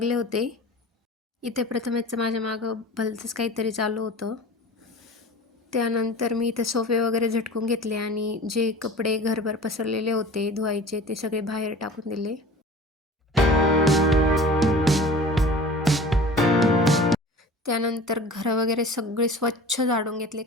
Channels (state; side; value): normal; both; correlation 0.40